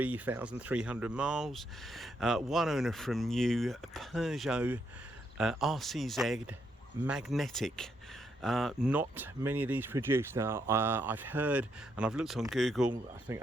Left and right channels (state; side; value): normal; both; correlation 0.77